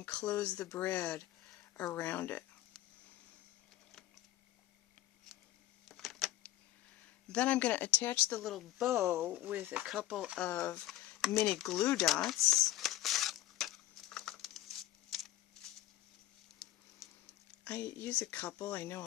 close the brad around it. Then I'm going to attach the little bow with a couple of mini glue dots. I use a couple. I know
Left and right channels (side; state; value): right; quieter; 14.3 dB